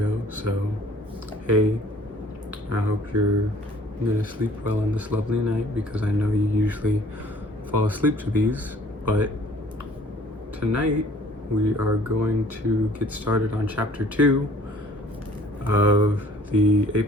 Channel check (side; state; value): both; normal; correlation 0.55